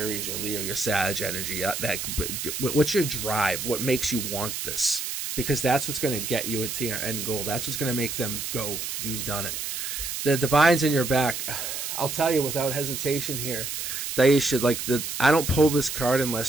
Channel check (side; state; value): right; noise; hiss, 4 dB below the sound